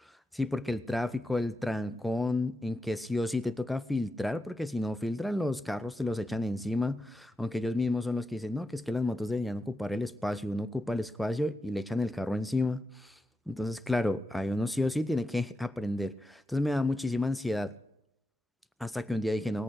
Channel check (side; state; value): both; normal; correlation 0.90